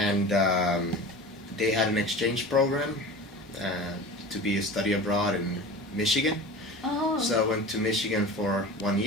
they had an exchange program to be a study abroad in Michigan. Oh. So I went to Michigan for 1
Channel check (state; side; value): normal; both; correlation 0.35